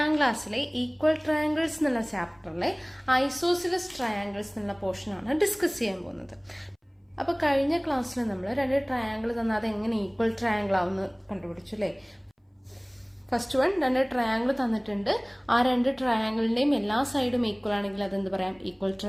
ക്ലാസ്സിലെ ഈക്വൽ ട്രയാങ്കിൾസ് എന്നുള്ള ചാപ്റ്ററിലെ ഐസോസിലസ് ട്രയാങ്കിൾസ് എന്നുള്ള പോർഷനാണ് ഡിസ്കസ് ചെയ്യാൻ പോകുന്നത്. അപ്പോൾ കഴിഞ്ഞ ക്ലാസ്സിൽ നമ്മൾ രണ്ട് ട്രയാങ്കിൾ തന്നാൽ അത് എങ്ങനെ ഈക്വൽ ട്രയാങ്കിൾ ആവുമെന്ന് കണ്ടുപിടിച്ചു അല്ലേ. ഫസ്റ്റ് വൺ, രണ്ട് ട്രയാങ്കിൾ തന്നിട്ടുണ്ട്. ആ രണ്ട് ട്രയാങ്കിളിന്റെയും എല്ലാ സൈഡും ഈക്വൽ ആണെങ്കിൽ അതെന്ത് പറയാം? ഈക്വൽ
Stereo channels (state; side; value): identical; both; correlation 1.00